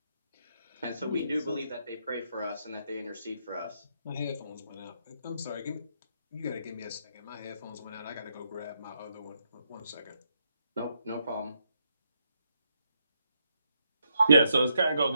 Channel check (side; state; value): both; inverted; correlation -0.79